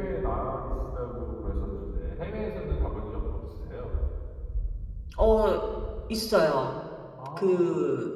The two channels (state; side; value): identical; both; correlation 1.00